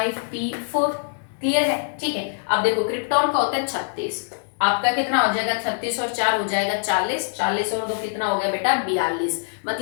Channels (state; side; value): silent; right; digital silence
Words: Clear है, ठीक है। अब देखो क्रिप्टॉन का होता है 36, आपका कितना हो जाएगा 36 और 4 हो जाएगा 40, 40 और 2 कितना हो गया बेटा 42।